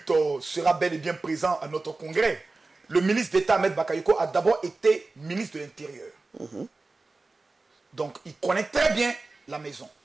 sera bel et bien présent à notre congrès. Le ministre d'État Ahmed Bakayoko a d'abord été ministre de l'Intérieur. Donc, il connaît très bien la maison.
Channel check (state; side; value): quieter; left; 3.5 dB